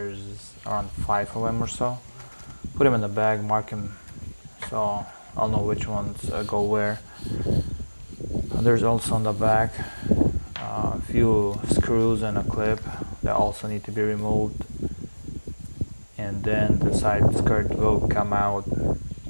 around 5 of them or so. Put them in the bag, mark them so I'll know which ones go where. There's also on the back a few screws and a clip that also need to be removed, and then the side skirt will come out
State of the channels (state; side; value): inverted; both; correlation -1.00